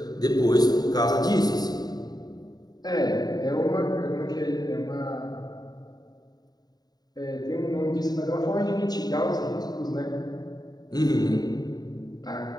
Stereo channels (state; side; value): late; right; 0.19 ms